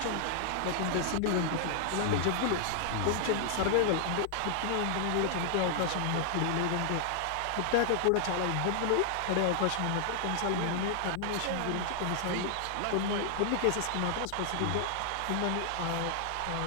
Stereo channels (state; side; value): different; both; correlation -0.01